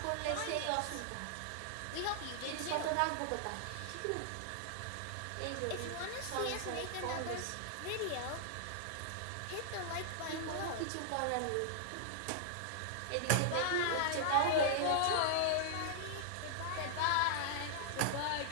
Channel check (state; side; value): different; both; correlation -0.01